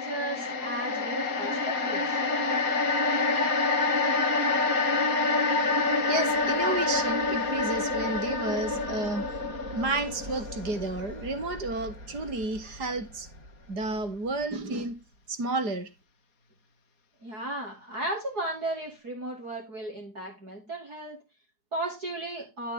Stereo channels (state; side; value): late; left; 4.9 ms